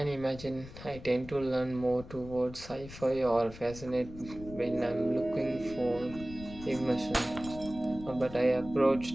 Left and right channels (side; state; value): left; noise; rumble, 14 dB below the sound